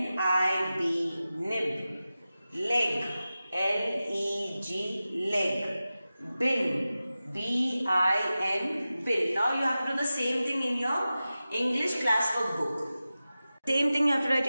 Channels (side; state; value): both; inverted; correlation -0.95